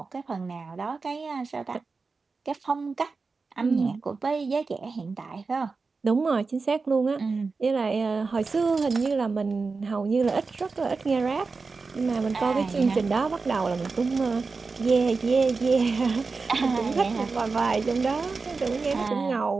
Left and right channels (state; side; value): quieter; left; 4.3 dB